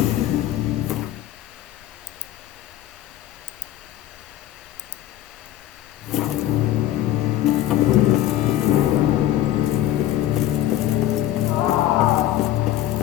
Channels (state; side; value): quieter; right; 13.3 dB